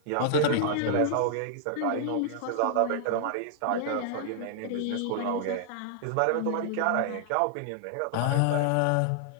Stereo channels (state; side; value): different; both; correlation -0.01